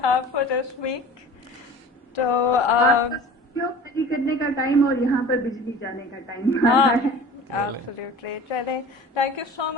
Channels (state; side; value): normal; both; correlation 0.41